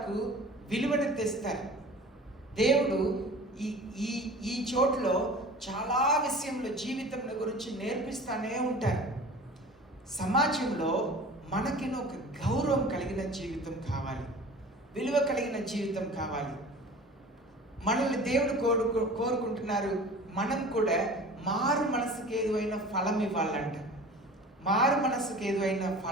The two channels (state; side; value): normal; both; correlation 0.40